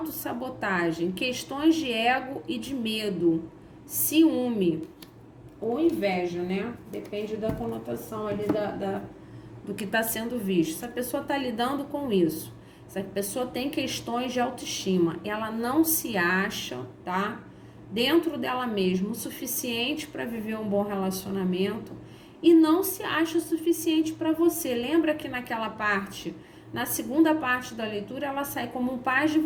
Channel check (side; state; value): both; identical; correlation 1.00